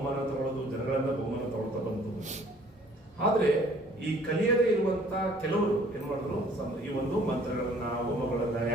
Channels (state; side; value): normal; both; correlation 0.56